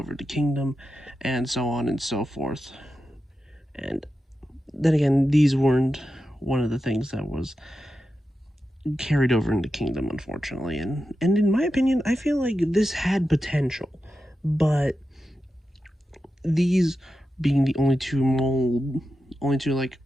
to Kingdom, and so on and so forth. And then again, these weren't one of the things that was carried over into Kingdom, unfortunately. And in my opinion, I feel like this had potential, but these being the only two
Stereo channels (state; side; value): normal; both; correlation 0.90